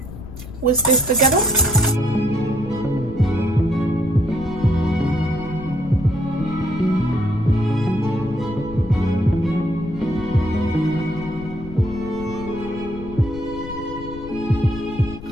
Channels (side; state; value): left; noise; rumble, 12 dB below the sound